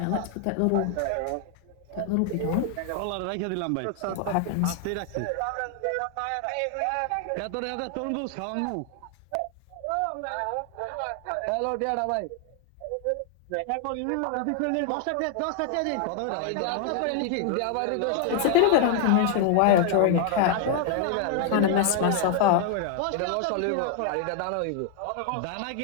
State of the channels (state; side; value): different; both; correlation 0.00